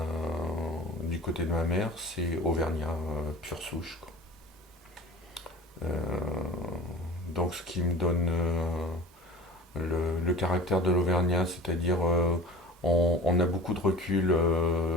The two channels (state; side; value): normal; both; correlation 0.39